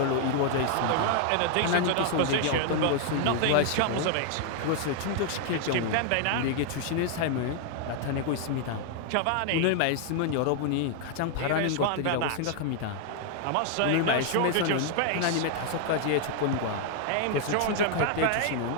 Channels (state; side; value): different; both; correlation 0.00